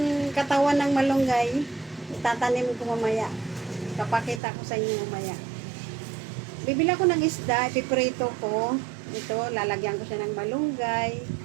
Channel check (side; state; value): left; drops out; at 4.4 s